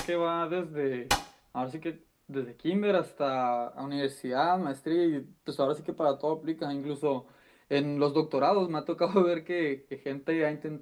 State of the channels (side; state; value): both; identical; correlation 1.00